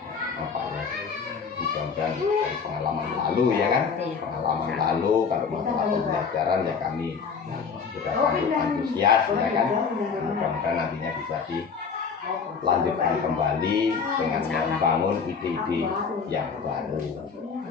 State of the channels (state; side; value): quieter; right; 5.8 dB